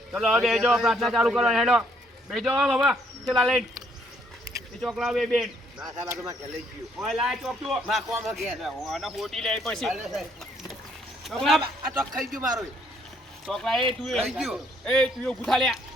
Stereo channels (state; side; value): normal; both; correlation 0.68